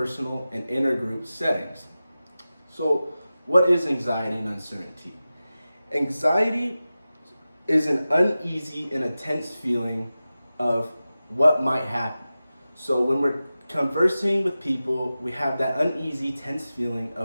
and intergroup settings. So what is anxiety and uncertainty? Anxiety is an uneasy and a tense feeling of what might happen. So when we're conversing with people, we have that uneasy, tense feeling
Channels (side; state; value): both; inverted; correlation -0.95